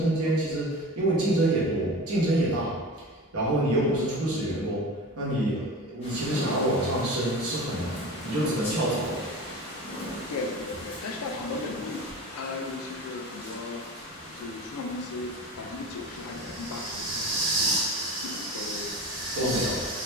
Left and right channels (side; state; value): both; normal; correlation 0.33